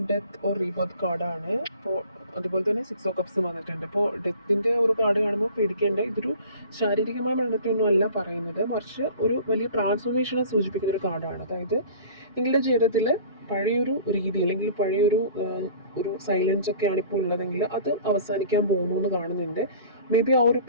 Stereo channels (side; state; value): both; inverted; correlation -0.46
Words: ഡെത്ത് ഓർ റീബർത്ത് കാർഡാണ്. അപ്പോൾ അതുപോലെ തന്നെ 6 ഓഫ് കപ്സ് വന്നിട്ടുണ്ട്. ഇപ്പോൾ ഡെത്തിൻ്റെ ഒരു കാർഡ് കാണുമ്പോൾ പേടിക്കേണ്ട, ഇതൊരു ശാരീരികമായ മരണത്തെയൊന്നും അല്ല പറയുന്നത്, മറിച്ച് ഒരു വലിയ ട്രാൻസ്ഫോർമേഷനെ സൂചിപ്പിക്കുന്ന ഒരു കാർഡാണ്. അതായത് നിങ്ങളുടെ ജീവിതത്തിൽ പഴയൊരു രീതി അല്ലെങ്കിൽ ഒരു സൈലൻസ് ഒക്കെയാണ് ഇപ്പോൾ ഉള്ളതെങ്കിൽ അത് അവസാനിക്കാൻ പോകുന്നു എന്ന് കാണുന്നുണ്ട്. മേ ബി ആ ഒരു